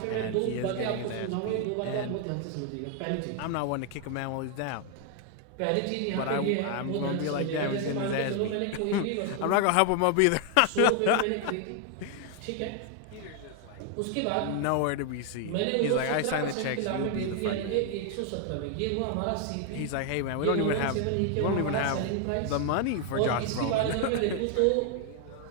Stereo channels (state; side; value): different; both; correlation 0.00